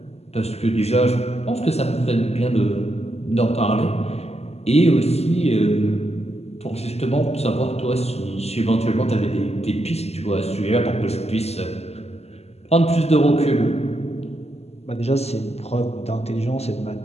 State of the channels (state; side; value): late; right; 0.30 ms